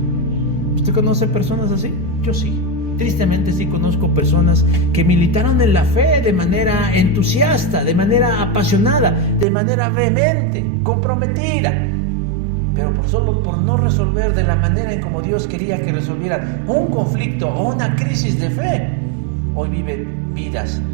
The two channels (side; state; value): left; drops out; at 9.5 s